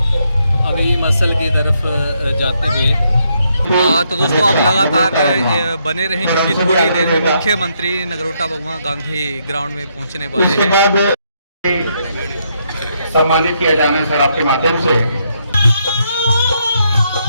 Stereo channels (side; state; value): both; inverted; correlation -0.76